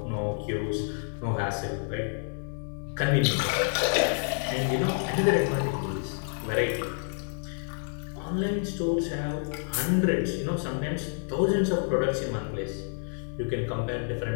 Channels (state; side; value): silent; right; 59 dB below the other